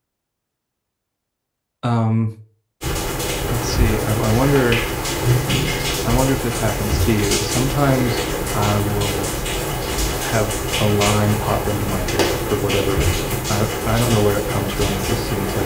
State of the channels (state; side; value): identical; both; correlation 1.00